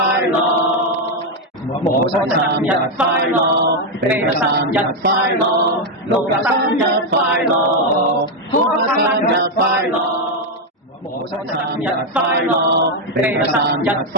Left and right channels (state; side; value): normal; both; correlation 0.03